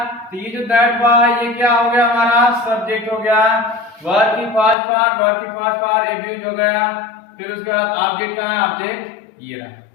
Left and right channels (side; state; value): right; drops out; at 4.8 s